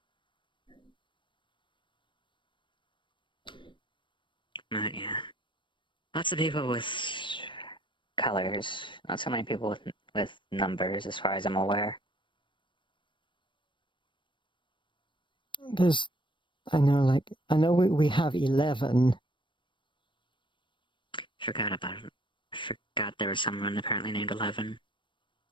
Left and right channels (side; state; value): right; late; 0.24 ms